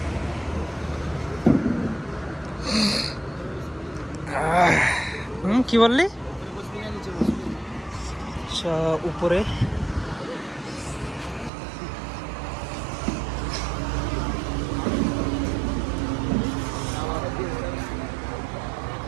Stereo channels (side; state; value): left; drops out; at 11.5 s